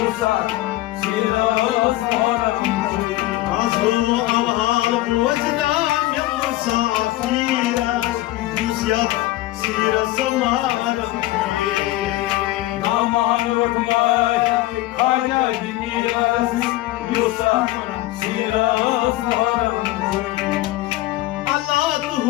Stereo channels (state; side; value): quieter; right; 17.1 dB